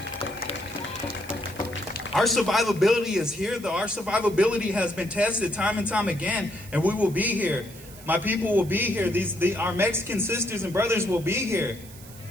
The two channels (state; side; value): noise; right; hiss, 19 dB below the sound